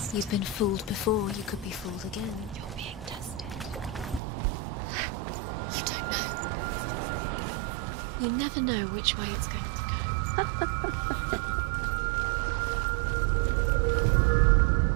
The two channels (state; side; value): drops out; left; at 4.2 s